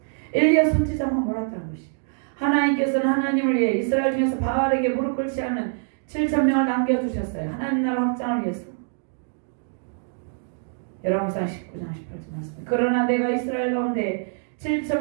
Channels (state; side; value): silent; left; digital silence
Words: 엘리야 선지자만 몰랐다는 것이에요. 하나님께서는 하나님을 위해 이스라엘 중에서 바알에게 무릎 꿇지 않은 7,000명을 남겨두셨어요. 하나님 나라 확장을 위해서. 열왕기상 19장 18절 말씀. 그러나 내가 이스라엘 가운데